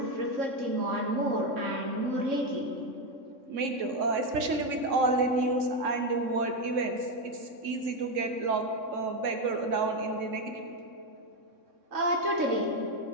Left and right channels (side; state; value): left; late; 3.6 ms